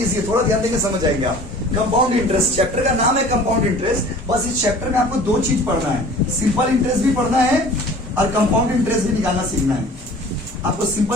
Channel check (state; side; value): normal; both; correlation 0.46